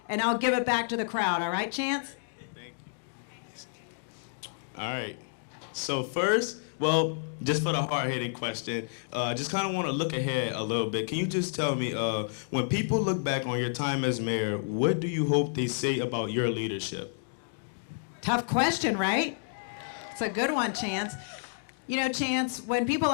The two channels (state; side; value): silent; right; digital silence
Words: give it back to the crowd. All right, Chance? Thank you. All right. So first, well, just for the hard-hitting question, just kind of want to look ahead a little bit. Can you just tell me, when people look back on your time as mayor, what do you hope they say about your leadership? Tough question, right? It's a good one, Chance. You know, Chance, when people